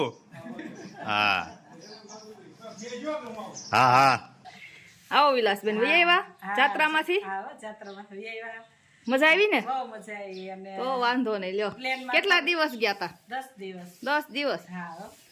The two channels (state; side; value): identical; both; correlation 1.00